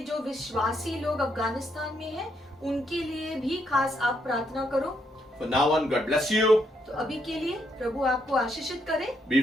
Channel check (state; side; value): normal; both; correlation 0.76